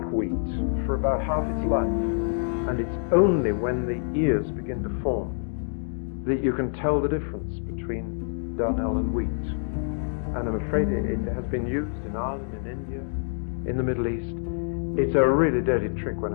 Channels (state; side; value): silent; right; digital silence